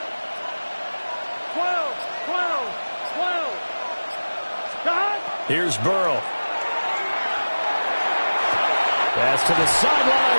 12, 12, 12. Stop. Here's Burrow. Pass to the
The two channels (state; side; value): inverted; both; correlation -1.00